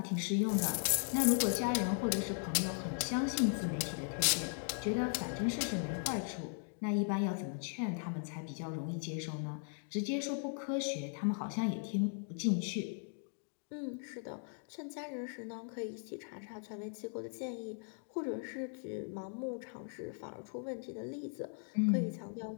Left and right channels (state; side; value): silent; right; 52 dB below the other